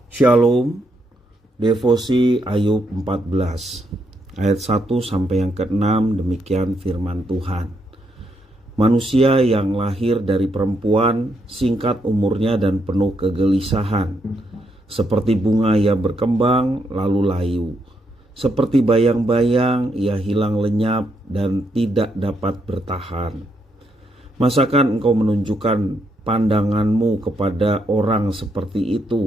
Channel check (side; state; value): both; normal; correlation 0.78